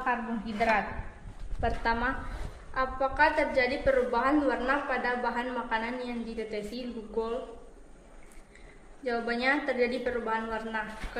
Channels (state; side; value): identical; both; correlation 1.00